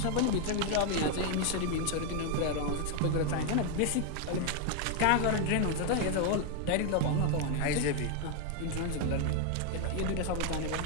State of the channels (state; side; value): different; both; correlation 0.01